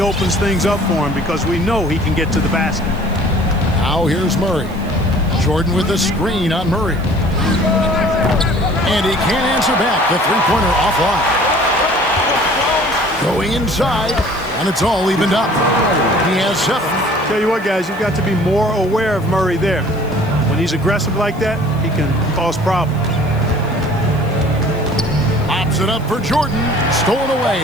things up for him, because we know he can get to the basket. Now here's Murray. Jordan with the screen on Murray. And he can't answer back. The three-pointer offline. Going inside, and it's all evened up. He has 7. Tell you what, guys, you've got to be more aware of Murray there. When he's aggressive like that, he can cause problems. Pops it up for Jordan. Stolen away.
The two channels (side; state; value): left; noise; hiss, 26 dB below the sound